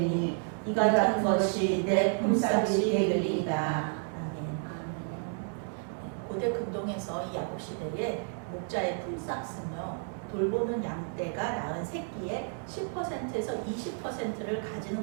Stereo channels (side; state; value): left; silent; 57 dB below the other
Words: 이 같은 것이 내 품삯이 되리이다. 고대 근동에서 이 야곱 시대에 목자의 품삯은요, 돌보는 양떼가 낳은 새끼의 10%에서 20%를